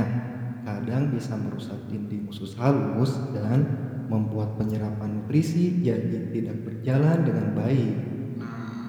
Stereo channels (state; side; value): identical; both; correlation 1.00